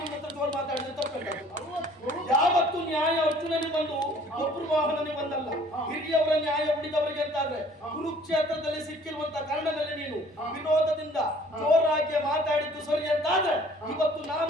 ಹತ್ರ ಜೋರು ಮಾತಾಡಿದ್ರೆ ತಪ್ಪು. ಯಾವತ್ತು ನ್ಯಾಯ ಅರ್ಜುನನಿಗೆ ಬಂದು ಒಬ್ಬರು ವಾಹನನಿಗೆ ಬಂದಲ್ಲ. ಹಿರಿಯವರ ನ್ಯಾಯ ಉಳಿದವರಿಗೆ ಅಂತಾದ್ರೆ ಕುರುಕ್ಷೇತ್ರದಲ್ಲಿ ಸಿಕ್ಕಿರುವಂತ ಕರ್ಣನಲ್ಲಿ ನೀನು ವಿರೋಧದಿಂದ ಜೋರಾಗಿ ಮಾತಾಡಿದ್ದು ಸರಿ ಅಂತಾದ್ರೆ ಇವತ್ತು ನಾನು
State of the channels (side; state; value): both; normal; correlation 0.54